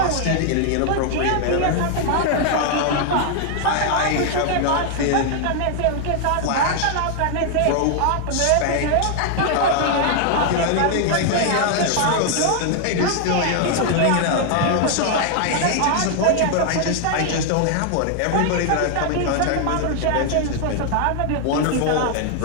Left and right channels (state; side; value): different; both; correlation 0.00